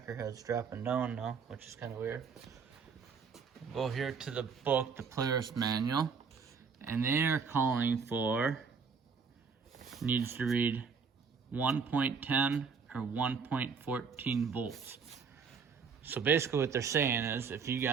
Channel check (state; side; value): quieter; left; 5.7 dB